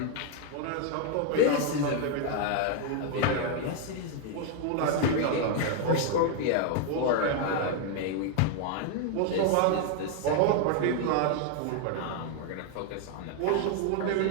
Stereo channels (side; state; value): both; different; correlation 0.00